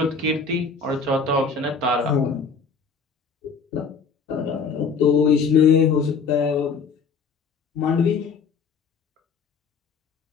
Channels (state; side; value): quieter; right; 5.2 dB